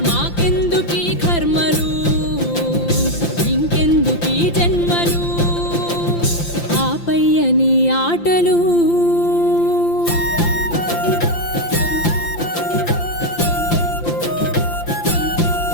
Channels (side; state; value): right; late; 5.8 ms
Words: మాకెందుకీ కర్మలు ఇంకెందుకీ జన్మలు ఆపయ్యని ఆటలు